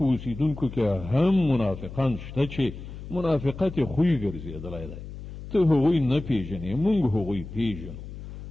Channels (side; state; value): left; noise; hum, 12 dB below the sound